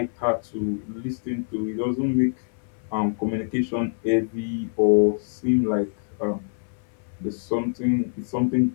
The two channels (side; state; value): right; silent; 61 dB below the other